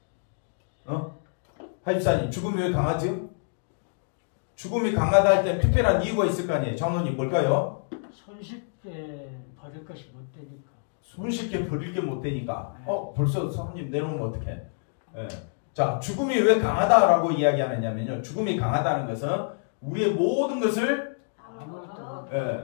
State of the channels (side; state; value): right; silent; digital silence